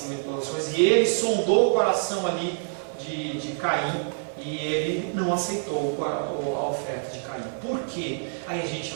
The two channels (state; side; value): silent; left; 61 dB below the other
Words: de todas as coisas. E ele sondou o coração ali de Caim e ele não aceitou a oferta de Caim. Por quê? Aí a gente